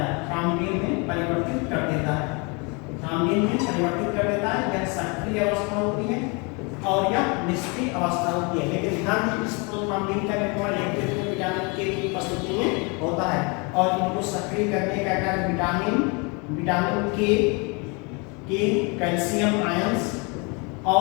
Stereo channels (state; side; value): quieter; right; 31.0 dB